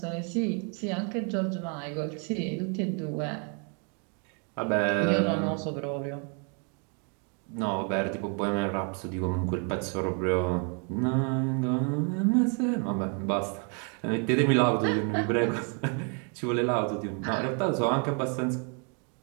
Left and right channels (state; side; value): quieter; left; 38.0 dB